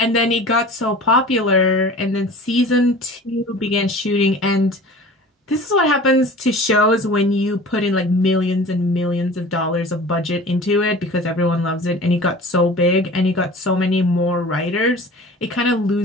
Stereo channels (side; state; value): both; normal; correlation 0.40